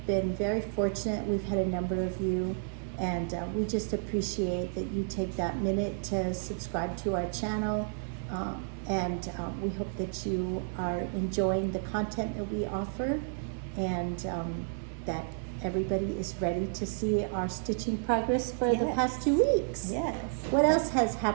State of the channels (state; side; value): silent; left; 57 dB below the other